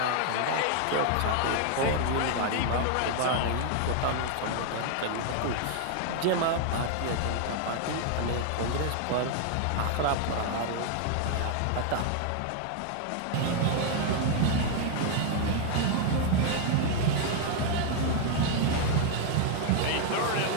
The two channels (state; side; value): different; both; correlation 0.00